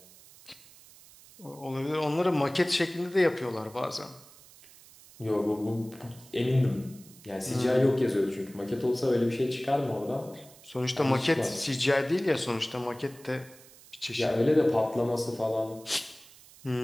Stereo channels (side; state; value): right; noise; hiss, 23 dB below the sound